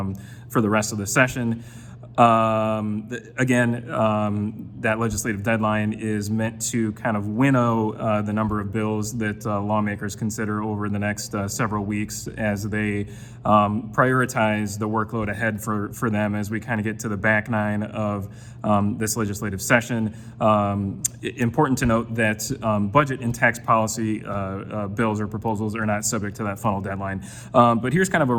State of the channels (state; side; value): identical; both; correlation 1.00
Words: for the rest of the session. That legislative deadline is meant to kind of winnow the number of bills that lawmakers consider over the next several weeks as they prioritize the workload ahead for them as we kind of get to the back nine of this legislative session. Important to note that budget and tax policy bills or proposals are not subject to that funnel deadline. But here's kind of a